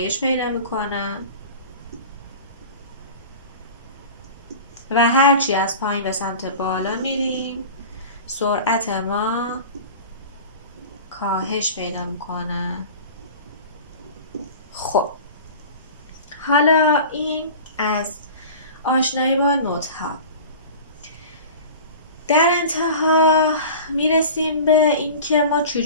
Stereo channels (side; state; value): both; inverted; correlation -0.37